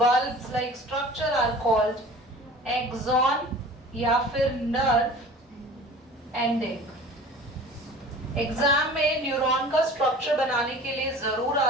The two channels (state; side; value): normal; both; correlation 0.42